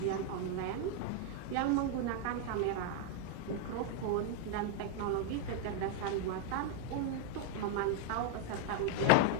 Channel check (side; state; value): both; different; correlation 0.00